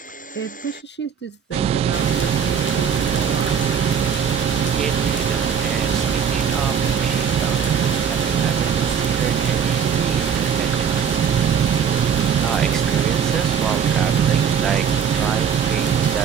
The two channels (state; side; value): quieter; left; 7.4 dB